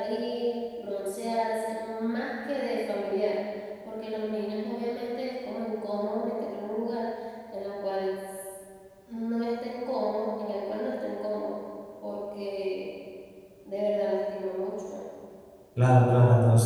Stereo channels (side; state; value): both; identical; correlation 1.00